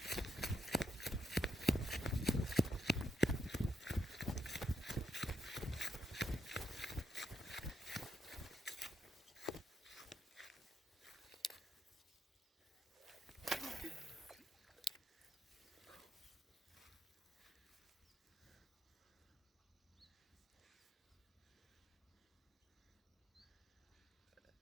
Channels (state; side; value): normal; both; correlation 0.79